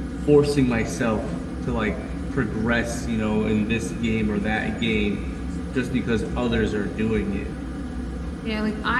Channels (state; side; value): identical; both; correlation 1.00